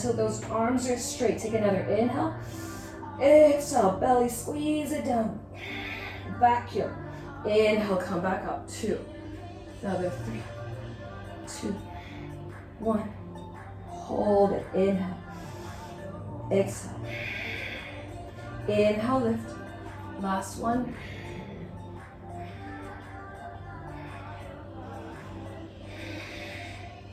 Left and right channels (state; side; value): identical; both; correlation 1.00